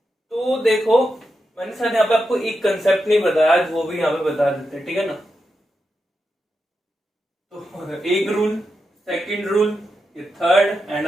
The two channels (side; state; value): both; normal; correlation 0.87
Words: देखो मैंने शायद यहाँ पे आपको एक कंसेप्ट नहीं बताया, आज वो भी यहाँ पे बता देते हैं। ठीक है ना, तो एक रूल, सेकंड रूल, ये थर्ड एंड